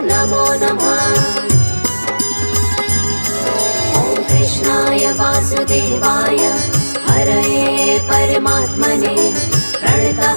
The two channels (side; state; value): both; inverted; correlation -1.00